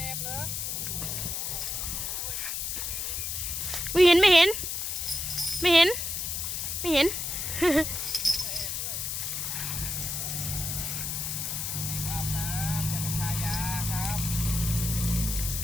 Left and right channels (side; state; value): left; noise; hiss, 2 dB below the sound